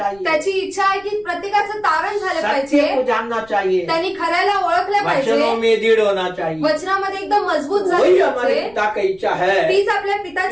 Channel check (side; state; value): left; noise; rumble, 27 dB below the sound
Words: त्याची इच्छा आहे की प्रत्येकाचं तारण झालं सत्य पाहिजे. को जानना चाहिए, त्यांनी खऱ्याला ओळखलं पाहिजे. वचनों में दृढ़ होना चाहिए. वचनामध्ये एकदम मजबूत वही झाले हमारे पाहिजे. पिता की इच्छा है. तीच आपल्या